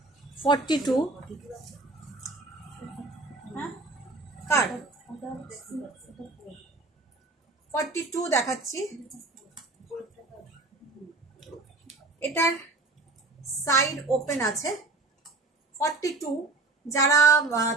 42 হ্যাঁ কার 42 দেখাচ্ছি। এটার সাইড ওপেন আছে। 42 যারা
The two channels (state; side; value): quieter; left; 3.3 dB